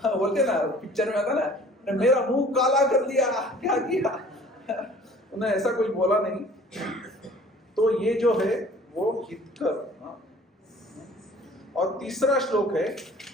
बोलते ना पिक्चर में आता ना, मेरा मुंह काला कर दिया, क्या किया। उन्होंने ऐसा कुछ बोला नहीं। तो ये जो है वो हितकर। और तीसरा श्लोक है,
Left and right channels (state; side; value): normal; both; correlation 0.50